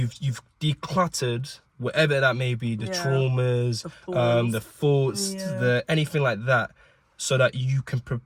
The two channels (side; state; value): both; identical; correlation 1.00